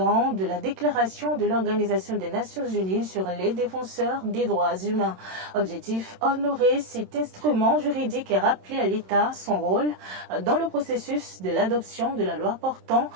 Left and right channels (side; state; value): left; late; 27 ms